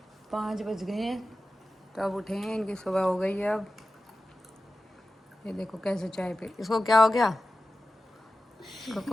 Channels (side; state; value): both; normal; correlation 0.94